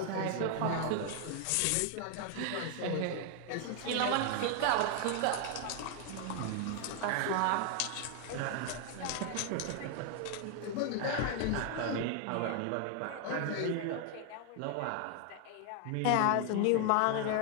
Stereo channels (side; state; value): both; different; correlation 0.00